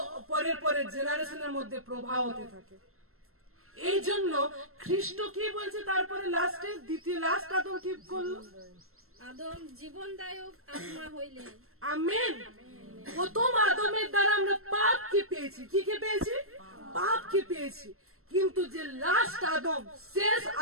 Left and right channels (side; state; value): left; late; 0.62 ms